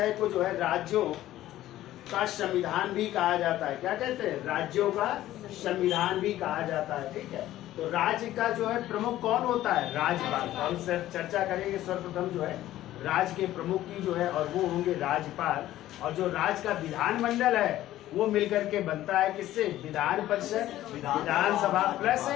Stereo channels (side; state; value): right; quieter; 14.2 dB